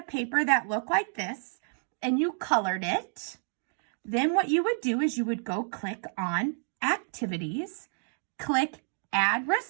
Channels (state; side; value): silent; left; 58 dB below the other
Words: paper that looked like this and you colored it, then what you would do is you would go click on activities, click add